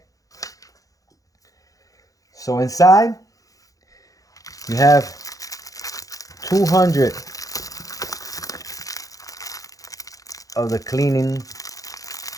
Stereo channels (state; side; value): late; right; 0.17 ms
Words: So inside you have 200 of the cleaning